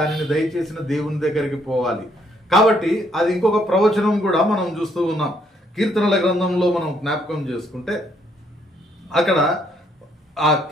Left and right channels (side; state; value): both; normal; correlation 0.69